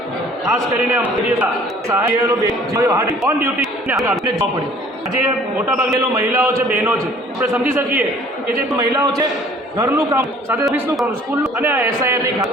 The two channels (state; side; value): normal; both; correlation 0.53